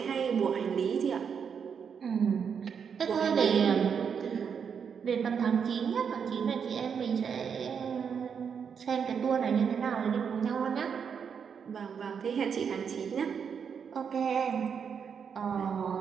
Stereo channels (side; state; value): left; quieter; 6.9 dB